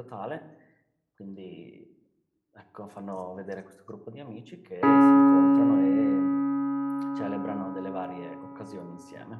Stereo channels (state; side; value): identical; both; correlation 1.00